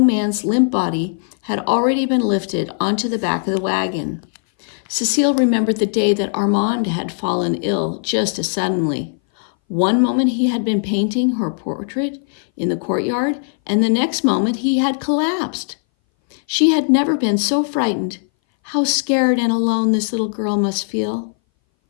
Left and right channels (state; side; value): silent; right; 61 dB below the other